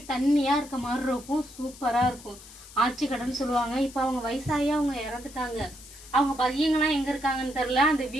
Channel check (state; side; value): noise; left; hiss, 18 dB below the sound